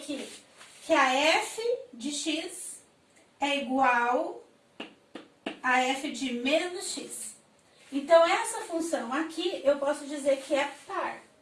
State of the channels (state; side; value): identical; both; correlation 1.00